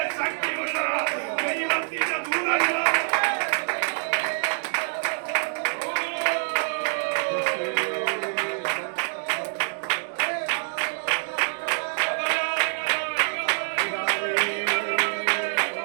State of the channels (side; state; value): left; silent; digital silence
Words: ശക്തിയുള്ള ദൈവത്തിന്റെ ദൂതന്മാർ